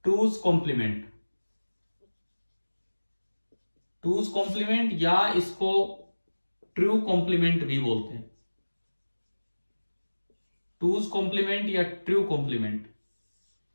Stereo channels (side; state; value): both; inverted; correlation -1.00